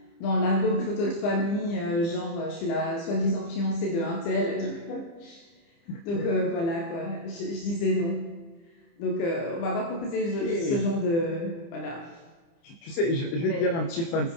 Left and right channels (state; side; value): late; right; 30 ms